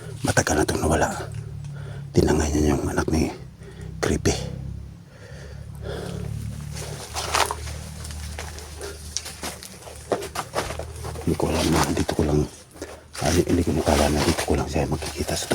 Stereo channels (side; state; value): both; identical; correlation 1.00